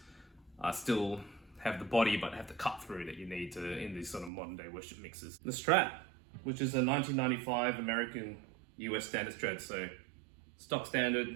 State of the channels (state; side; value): drops out; left; at 4.3 s